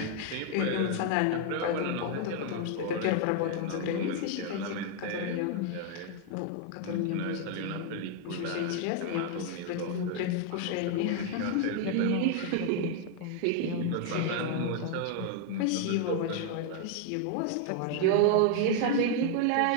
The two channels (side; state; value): both; different; correlation 0.00